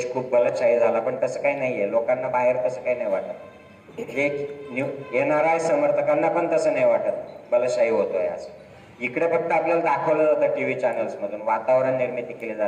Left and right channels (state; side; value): identical; both; correlation 1.00